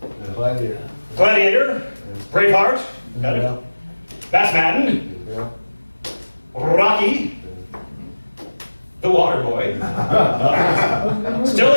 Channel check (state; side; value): inverted; both; correlation -1.00